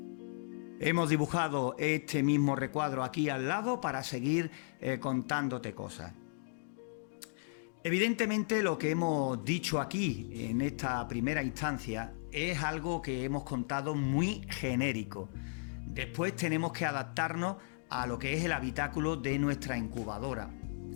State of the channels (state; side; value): silent; right; digital silence